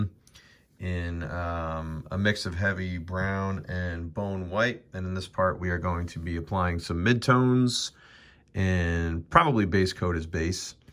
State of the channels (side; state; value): both; identical; correlation 1.00